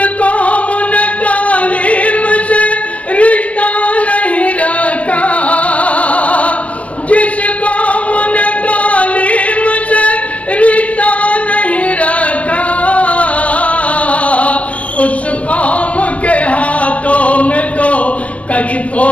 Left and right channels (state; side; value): late; right; 0.065 ms